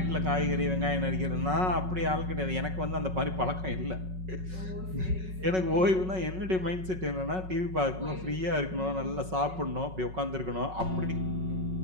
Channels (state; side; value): late; left; 5.4 ms